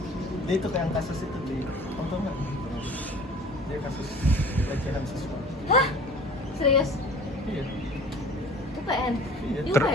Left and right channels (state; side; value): normal; both; correlation 0.46